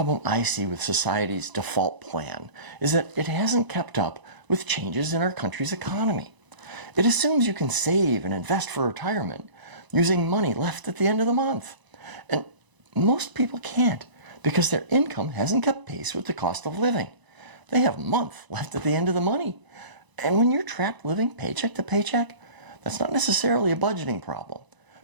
I see with society's default plan is that it hasn't kept up with changes in our country's economy. It assumes you can save and invest for retirement using money left at the end of the month. And most people can't. because their income hasn't kept pace with the cost of living. They have a month left at the end of the money. And when you're trapped living paycheck to paycheck, that's not necessarily a budgeting problem,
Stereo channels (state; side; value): late; left; 1.0 ms